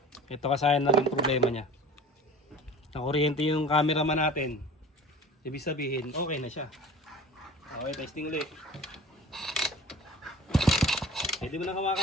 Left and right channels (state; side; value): normal; both; correlation 0.41